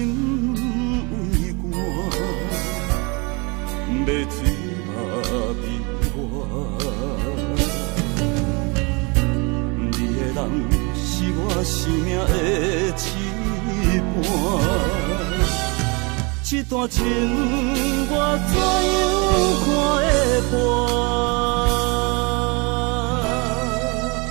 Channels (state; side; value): quieter; left; 29.7 dB